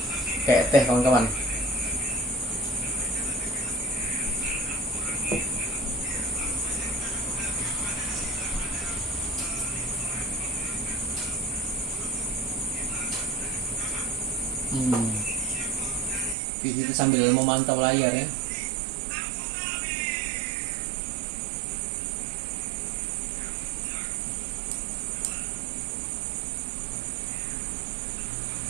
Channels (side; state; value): left; drops out; at 16.4 s